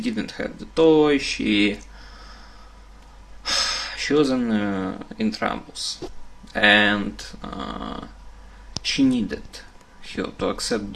have the toy. She was in troubles, and she needed her to accept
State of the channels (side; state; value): both; identical; correlation 1.00